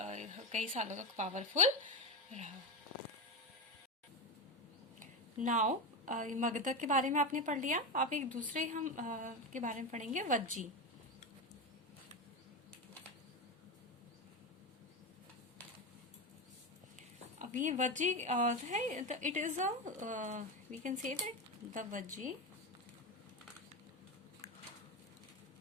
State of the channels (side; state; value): both; normal; correlation 0.16